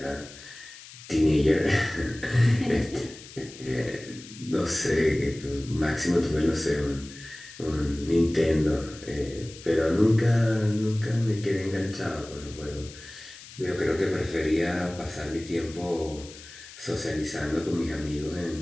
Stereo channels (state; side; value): noise; left; hiss, 17 dB below the sound